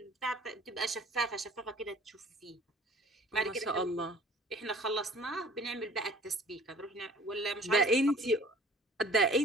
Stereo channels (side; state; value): both; normal; correlation 0.49